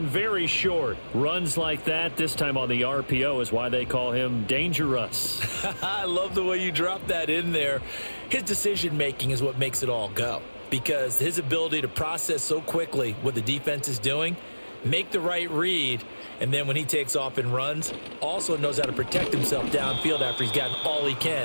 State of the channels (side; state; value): both; inverted; correlation -1.00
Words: very short. Runs like that, this time on the RPO, is why they call him dangerous. I love the way you dropped that in there. His decision-making is what makes it all go. Because his ability to process so quickly what the defense is doing, make the right read, and then when he takes off and runs, also knows how to protect himself downfield after he's gotten all he